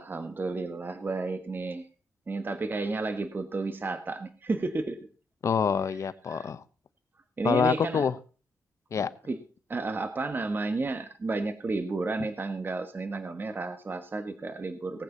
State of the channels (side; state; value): both; normal; correlation 0.76